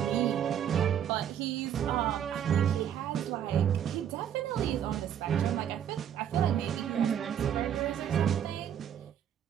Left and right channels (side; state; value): left; quieter; 9.5 dB